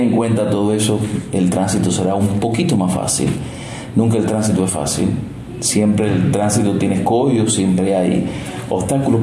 en cuenta todo eso, el tránsito será un poquito más fácil. Nunca el tránsito es fácil. Siempre el tránsito tiene escollos, siempre hay obstáculos,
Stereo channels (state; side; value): identical; both; correlation 1.00